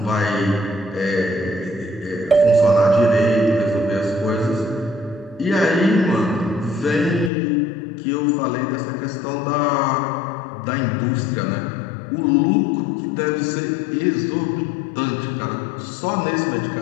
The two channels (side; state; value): right; drops out; at 7.3 s